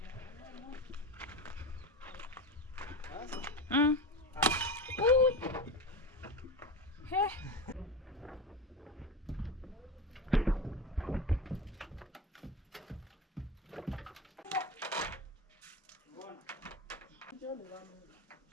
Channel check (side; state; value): both; normal; correlation 0.24